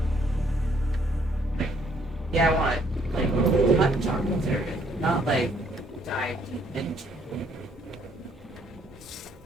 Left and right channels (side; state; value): both; normal; correlation 0.66